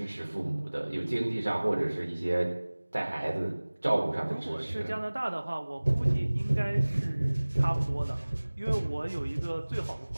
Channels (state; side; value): inverted; both; correlation -1.00